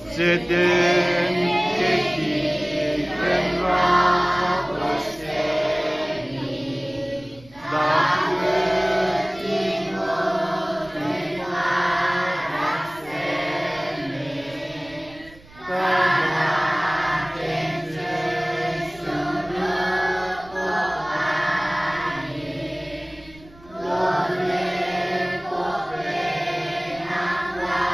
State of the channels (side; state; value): right; noise; rumble, 23 dB below the sound